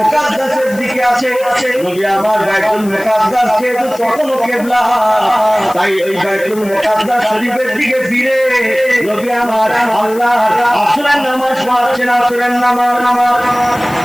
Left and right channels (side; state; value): left; noise; hiss, 18 dB below the sound